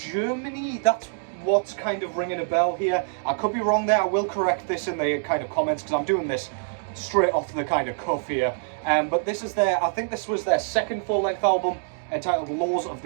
That's what's kind of ringing a bell here. I could be wrong there. I will correct this in the kind of comments, because I'm doing this straight off the kind of cuff here. But this is I think this was their 2nd full-length album entitled Laws of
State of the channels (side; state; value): left; silent; digital silence